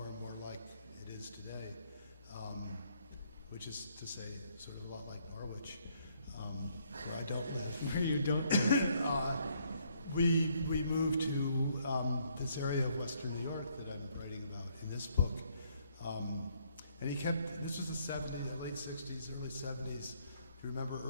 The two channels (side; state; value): both; inverted; correlation -0.69